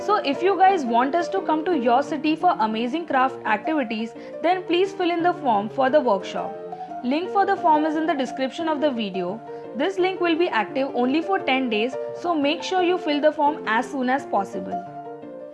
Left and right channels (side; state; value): both; identical; correlation 1.00